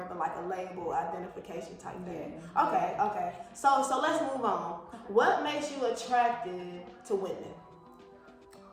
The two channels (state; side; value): identical; both; correlation 1.00